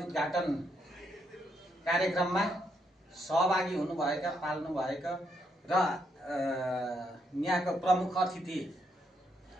उद्घाटन कार्यक्रममा सहभागी हुनुभएका पाल्नुभएका र यहाँको प्रमुख अतिथि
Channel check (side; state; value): both; normal; correlation 0.77